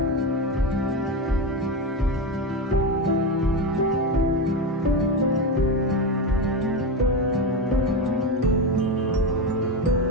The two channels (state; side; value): normal; both; correlation 0.16